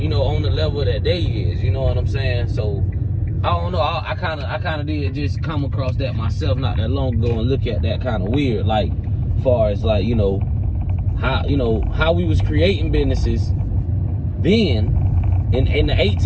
the level that they is, you know what I'm saying? So I don't know. I kind of did just come across that myself not that long ago and look at that kind of weird, like, far as like, how we was creating businesses then in the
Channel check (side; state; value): both; identical; correlation 1.00